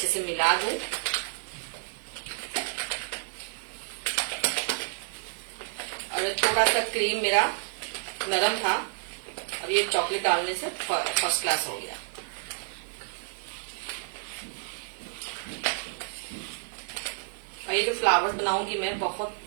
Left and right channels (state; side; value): silent; left; digital silence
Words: से मिला दूं। और थोड़ा सा क्रीम मेरा नरम था, अब ये चॉकलेट डालने से फर्स्ट क्लास हो गया। और ये जो फ्लावर्स बनाऊंगी मैं बहुत